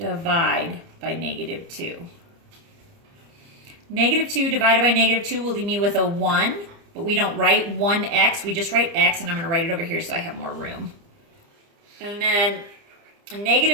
by negative 2. Negative 2 divided by negative 2 will leave me with a 1, but we don't write 1x, we just write x, and I'm going to write it over here so I have more room. And then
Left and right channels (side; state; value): left; late; 30 ms